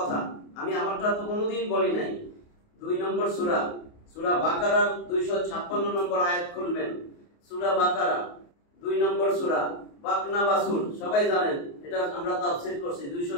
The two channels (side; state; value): right; late; 28 ms